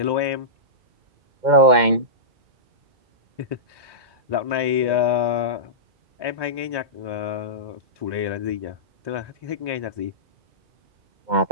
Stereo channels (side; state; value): left; late; 2.2 ms